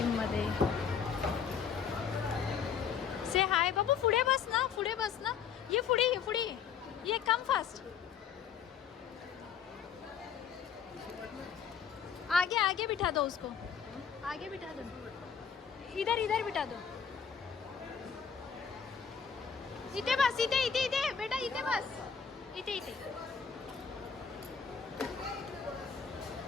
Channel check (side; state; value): right; quieter; 7.1 dB